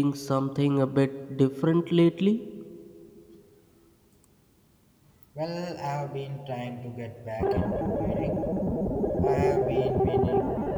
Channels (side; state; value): both; identical; correlation 1.00